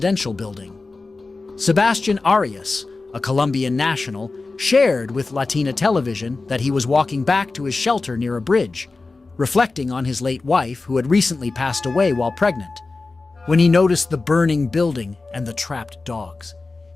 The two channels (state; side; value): quieter; right; 3.7 dB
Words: building. Sebastian Arias, a Colombian national, shared with Latina television that he was walking back to his shelter near a bridge, reflecting on his late wife who had recently passed away while pregnant. When he noticed the burning building and the trapped dogs,